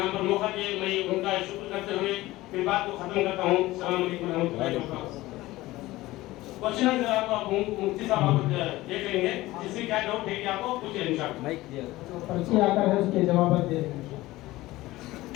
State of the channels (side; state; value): right; quieter; 18.0 dB